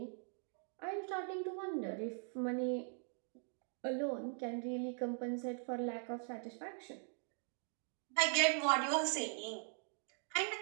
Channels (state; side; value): silent; left; 50 dB below the other